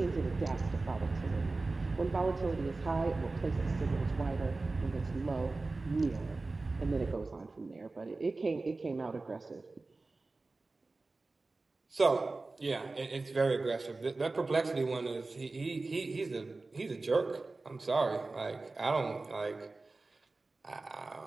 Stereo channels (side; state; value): left; quieter; 3.5 dB